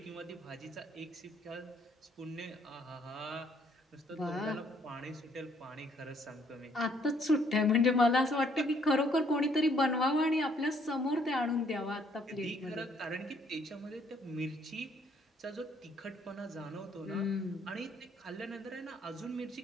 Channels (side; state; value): both; normal; correlation 0.66